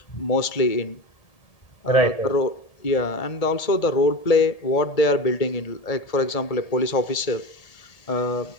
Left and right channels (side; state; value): right; late; 1.8 ms